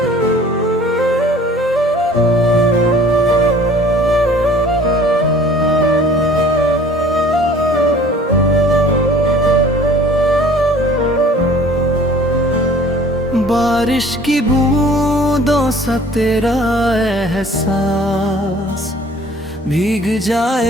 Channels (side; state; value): both; normal; correlation 0.50